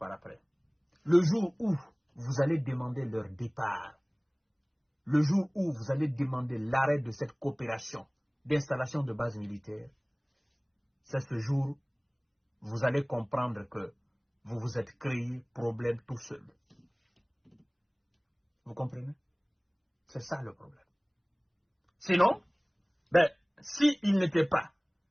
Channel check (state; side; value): identical; both; correlation 1.00